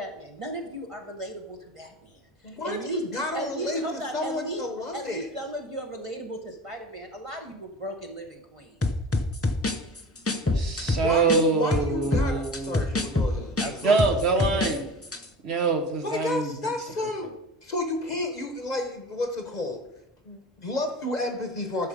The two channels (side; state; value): both; normal; correlation 0.37